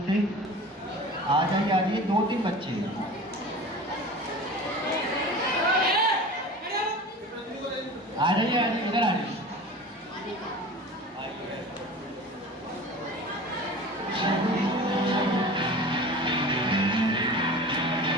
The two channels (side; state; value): both; normal; correlation 0.36